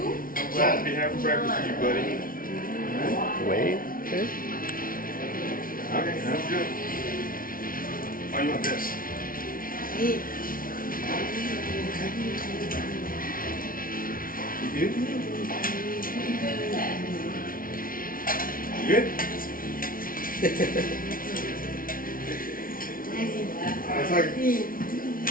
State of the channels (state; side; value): late; right; 0.41 ms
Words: I'm glad to be having breakfast with you, buddy. Wait. Okay. Okay, that's good. Oh, you want this? You good? You good? That's like, there